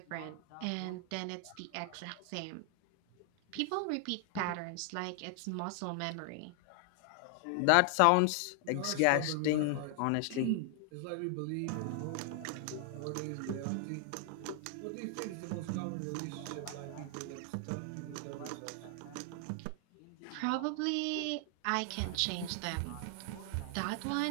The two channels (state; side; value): different; both; correlation 0.00